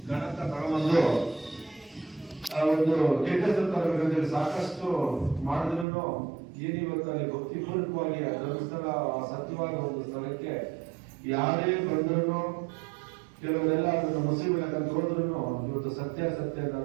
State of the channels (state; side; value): drops out; left; at 5.9 s